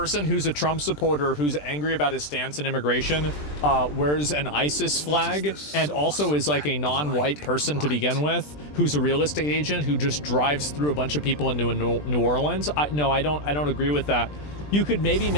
who's a Trump supporter who's angry about his stance in immigration wears an ISIS flag and also is like a non-white person to begin with, who's a real estate agent who just drives through a bunch of people into New Orleans? No, I don't agree with that. You could maybe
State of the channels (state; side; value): late; right; 20 ms